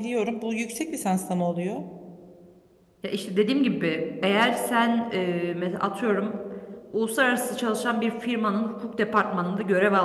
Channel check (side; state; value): both; identical; correlation 1.00